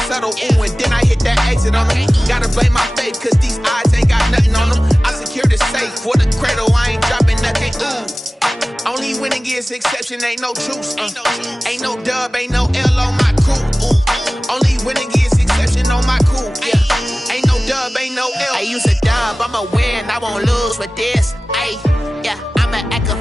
subtle, ooh, and then I hit that exit on them. Gotta blame my faith, cause these eyes ain't got nothing on them. I secure the safe for the cradle, I ain't dropping nothing, ooh. Only winning is exception, ain't no truce. Ain't no dub, ain't no L on my crew. Only winning is exception on my crew. Yeah, ain't no dub, ain't no L. I use a dub, I'ma win, I won't lose with this. Yeah, I'ma act a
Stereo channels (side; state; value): both; normal; correlation 0.97